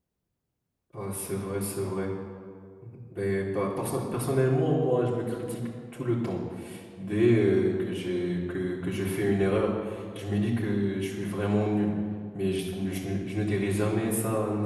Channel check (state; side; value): identical; both; correlation 1.00